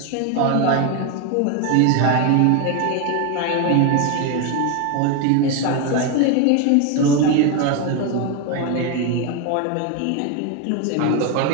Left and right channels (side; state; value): both; different; correlation 0.02